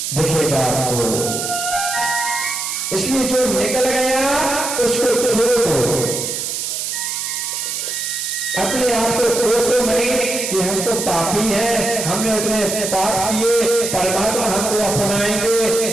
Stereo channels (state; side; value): noise; right; hiss, 3 dB below the sound